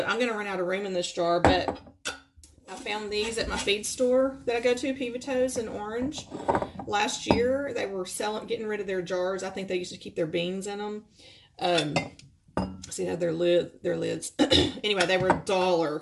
I'm going to run out of room in this jar, but I found these at my feed store that I go to, Pivotto's in Orange. Last year, they were getting rid of their jars. I think they used to keep their beans in them. See how their lids. Anyway, they were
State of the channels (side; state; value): both; identical; correlation 1.00